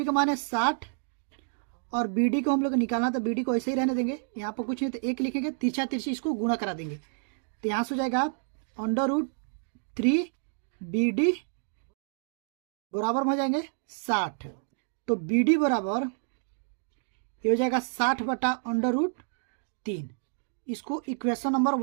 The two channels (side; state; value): left; silent; digital silence